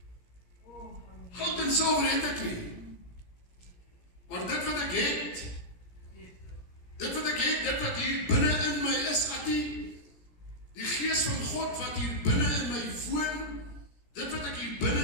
Goud en silwer het ek nie. Maar dit wat ek het, dit wat hier binne in my is, die gees van God wat hier binne in my woon, dit wat ek hier binne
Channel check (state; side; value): late; right; 17 ms